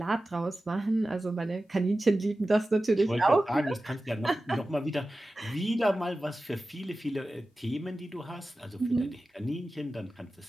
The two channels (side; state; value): both; normal; correlation 0.95